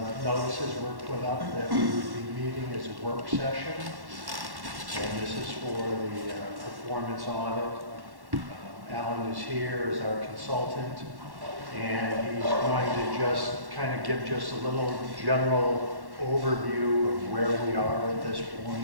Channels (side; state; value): left; late; 1.1 ms